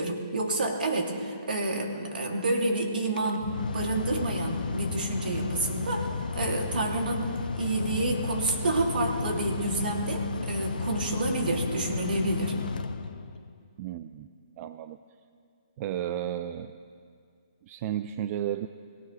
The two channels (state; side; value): inverted; both; correlation -0.61